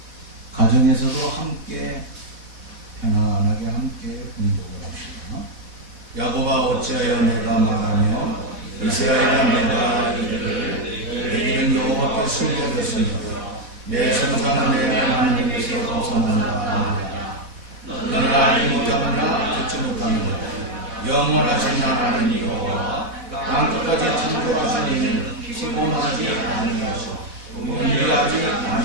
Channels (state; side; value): late; left; 4.1 ms